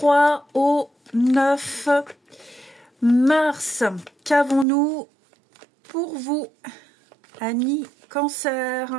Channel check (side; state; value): left; drops out; at 4.7 s